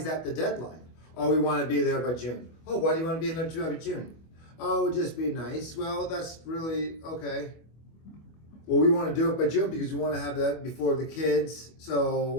that the deadline? Oh, we want to be there by June. Oh, why do you want to be there by June? Oh, it would just be nice. Well, that's really okay. Well, we want to do it by June because we want to have that before the kids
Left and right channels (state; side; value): late; right; 25 ms